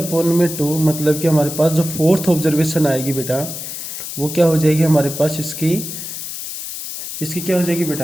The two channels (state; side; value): noise; left; hiss, 8 dB below the sound